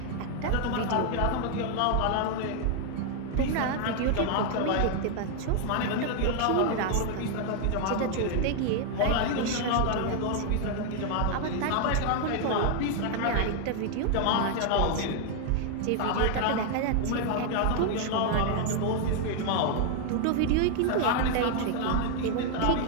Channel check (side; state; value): both; different; correlation 0.00